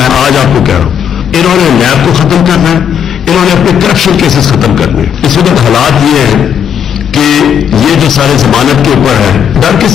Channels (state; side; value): quieter; right; 8.4 dB